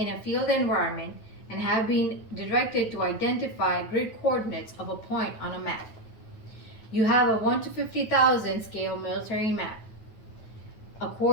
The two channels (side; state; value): right; late; 9.1 ms